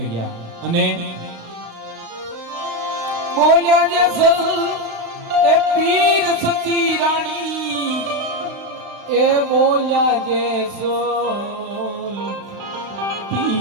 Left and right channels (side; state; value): left; late; 35 ms